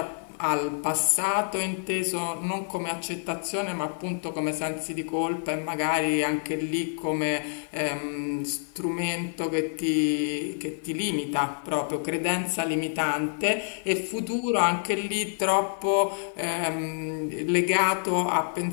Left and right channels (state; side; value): silent; right; 60 dB below the other